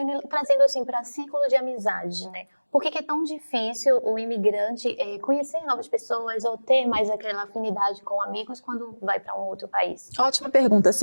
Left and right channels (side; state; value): both; inverted; correlation -1.00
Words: trazendo assim para ciclo de amizade, né? Por que é tão difícil o imigrante conhecer novas pessoas ou ter mais aquela afinidade com amigos quando vai para um outro país? Ótima pergunta,